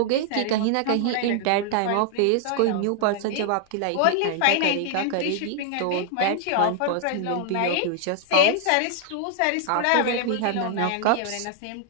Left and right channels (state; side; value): different; both; correlation 0.00